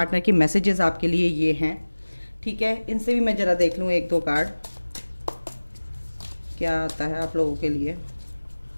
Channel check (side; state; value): both; inverted; correlation -1.00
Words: के मैसेजेस आपके लिए ये हैं। ठीक है, इनसे भी मैं ज़रा देख लूँ 1-2 कार्ड क्या आता है आप लोगों के लिए।